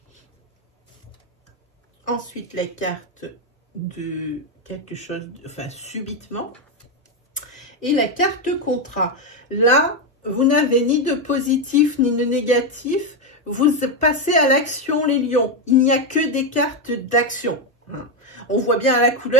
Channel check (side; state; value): both; normal; correlation 0.06